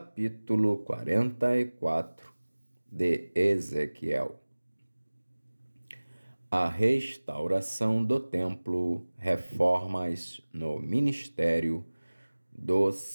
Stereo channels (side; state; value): both; inverted; correlation -1.00